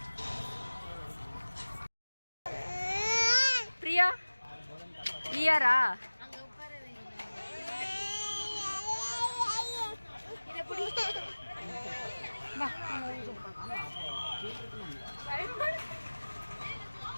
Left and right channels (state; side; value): inverted; both; correlation -1.00